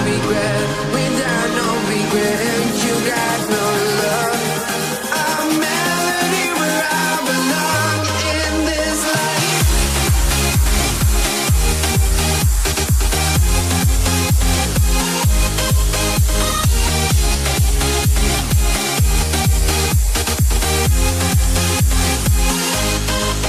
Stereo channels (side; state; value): both; identical; correlation 1.00